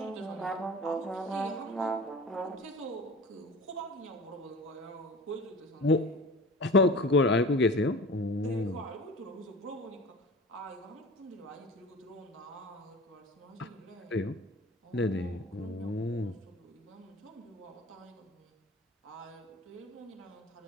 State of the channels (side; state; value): both; normal; correlation 0.38